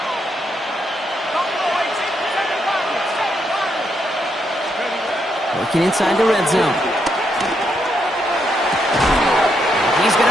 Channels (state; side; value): normal; both; correlation 0.78